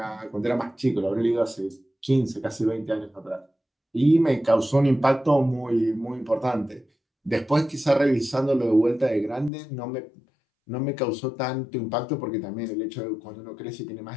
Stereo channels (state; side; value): drops out; right; at 9.5 s